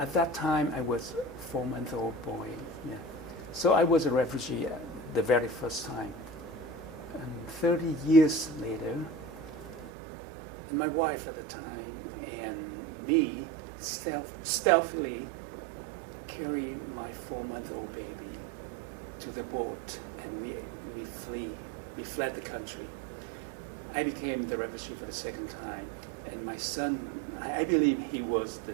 that time, I was a 4-month-old boy. Yeah. So I was a refugee the very first time. And 30 years later, and my wife at the time and me stealthily carry my 4-month-old baby to the boat, and we fled the country. I became the refugee for the second time, and my son, I believe he was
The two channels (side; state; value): left; drops out; at 9.9 s